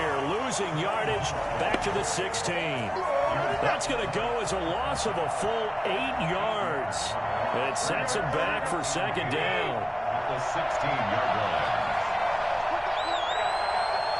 losing yardage back to the 16. That's going to go as a loss of a full 8 yards. It sets him back for 2nd down. At the 16-yard line.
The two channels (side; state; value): both; identical; correlation 1.00